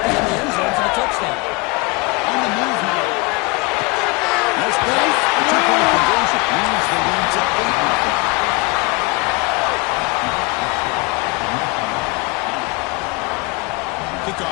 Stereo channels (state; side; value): quieter; right; 27.1 dB